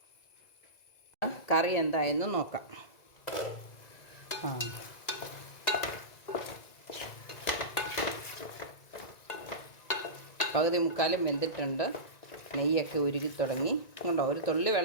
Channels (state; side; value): late; right; 1.9 ms